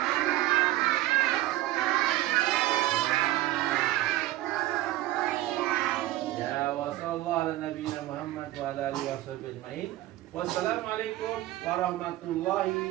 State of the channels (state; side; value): quieter; left; 16.2 dB